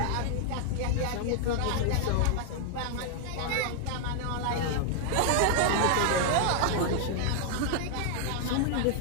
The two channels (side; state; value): both; different; correlation 0.00